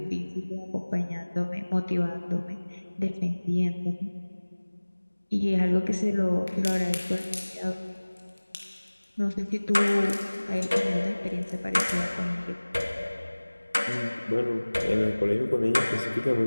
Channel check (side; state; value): both; inverted; correlation -1.00